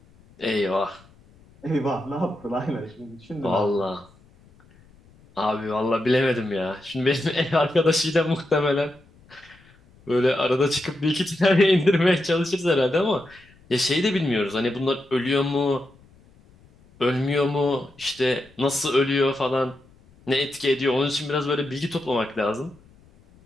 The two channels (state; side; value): noise; left; rumble, 28 dB below the sound